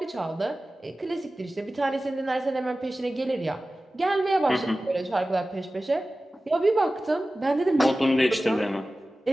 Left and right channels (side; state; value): both; normal; correlation 0.96